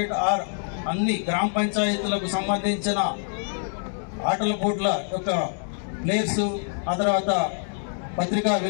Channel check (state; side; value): silent; right; 61 dB below the other